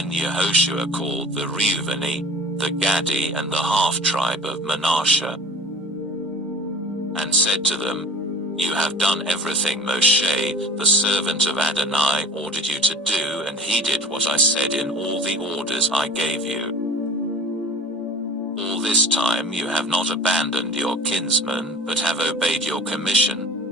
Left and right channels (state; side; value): normal; both; correlation 0.41